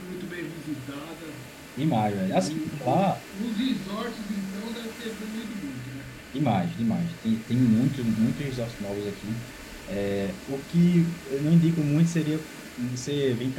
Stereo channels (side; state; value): both; identical; correlation 1.00